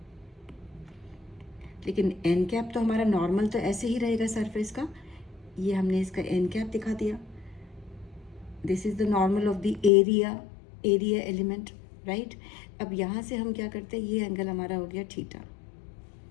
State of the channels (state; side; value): drops out; right; at 9.9 s